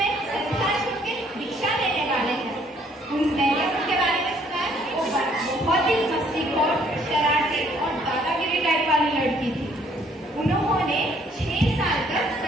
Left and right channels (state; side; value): normal; both; correlation 0.63